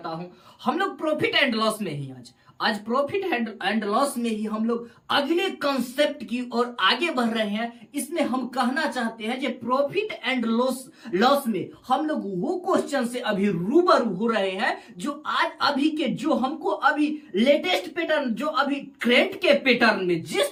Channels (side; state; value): both; identical; correlation 1.00